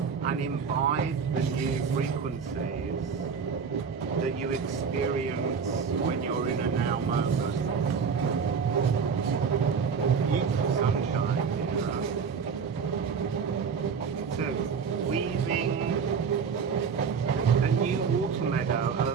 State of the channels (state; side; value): quieter; left; 6.2 dB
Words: and imbibe the new frequencies that you experience when you're in a now moment. Beautiful sunshine here. So, weaving a new water meadow,